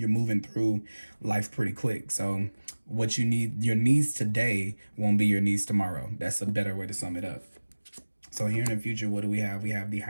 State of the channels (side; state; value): both; inverted; correlation -1.00